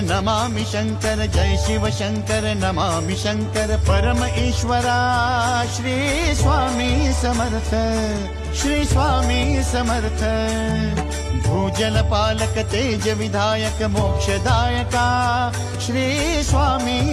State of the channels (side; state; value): both; identical; correlation 1.00